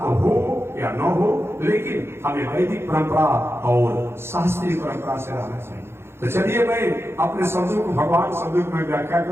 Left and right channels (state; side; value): late; left; 0.12 ms